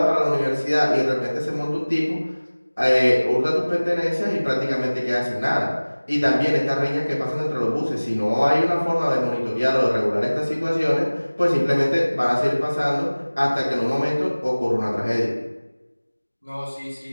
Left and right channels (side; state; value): both; inverted; correlation -1.00